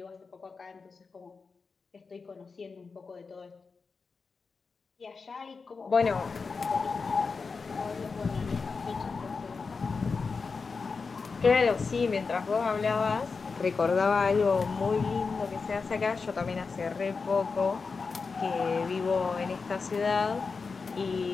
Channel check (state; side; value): quieter; right; 4.7 dB